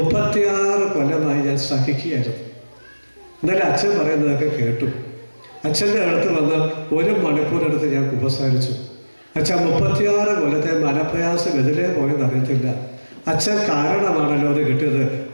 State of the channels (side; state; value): both; inverted; correlation -1.00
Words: കൊല്ലമായി ഞാൻ സഹിക്കുകയായിരുന്നു. എന്നാലും അച്ഛൻ പറയുന്നതൊക്കെ കേട്ടു. അച്ഛൻ്റെ അടുത്ത് വന്ന് 1 മണിക്കൂറെടുത്ത് ഞാൻ കുമ്പസാരിച്ചു. അച്ഛൻ 36 കൊല്ലത്തെ മനപ്രയാസം എതിരെ പോയെന്ന് അറിയത്തില്ല. അച്ഛൻ കാരണമാണല്ലോ അത് കിട്ടിയത്.